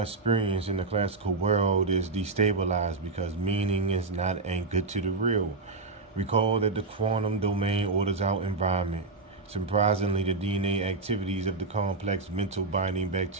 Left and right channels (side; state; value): left; quieter; 3.6 dB